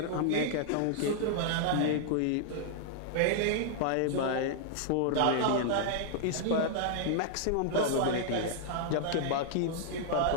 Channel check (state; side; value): different; both; correlation -0.01